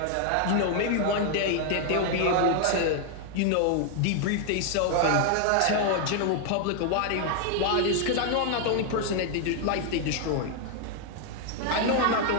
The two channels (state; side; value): different; both; correlation 0.00